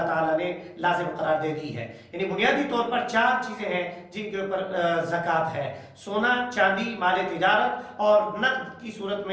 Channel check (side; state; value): both; identical; correlation 1.00